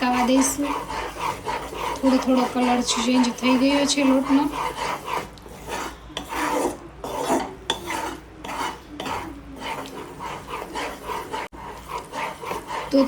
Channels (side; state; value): both; identical; correlation 1.00